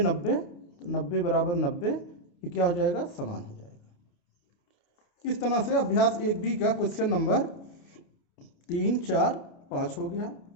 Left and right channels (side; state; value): right; late; 29 ms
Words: तो 90 = 90, ये क्या हो जाएगा, समान हो जाएगा। इस तरह से अभ्यास 1B का क्वेश्चन नंबर 3 4 5 हो गया।